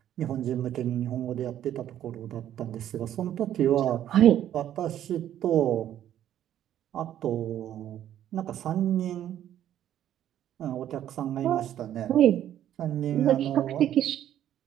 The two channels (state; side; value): quieter; left; 11.3 dB